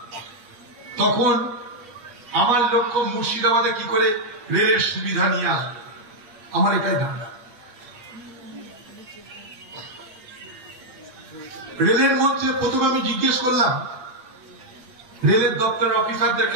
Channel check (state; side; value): late; left; 8.4 ms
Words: তখন আমার লক্ষ্য মুর্শিদাবাদে কি করে রেলের সুবিধা নিয়ে আসবে, আমার এটাই ধান্দা। রেলের মন্ত্রী প্রথমে আমি জিজ্ঞেস করলাম, রেলের দপ্তরের অফিসারদেরকে